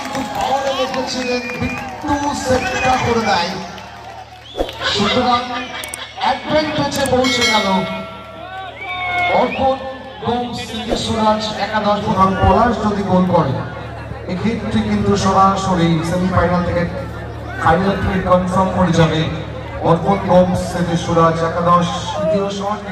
পাওয়ারে রেখেছিলেন বিট্টু সেটটা করে দেয়, সুতরাং অ্যাডভান্টেজে পৌঁছে গেল অর্পণ গোমস সুরাজ একাদশ প্রধান পলাশ যদি গোল করে এক্ষেত্রে কিন্তু সরাসরি সেমিফাইনাল থেকে ফাইনাল থেকে কনফার্ম করে যাবে অর্পণ গোমস সুরাজ একাদশ। দ্বিতীয় শট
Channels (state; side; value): identical; both; correlation 1.00